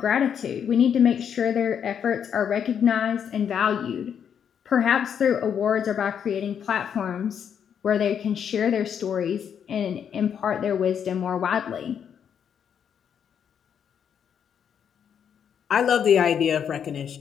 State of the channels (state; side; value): quieter; right; 8.1 dB